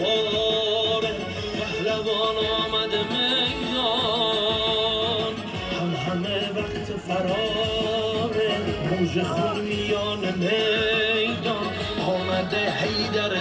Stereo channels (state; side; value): identical; both; correlation 1.00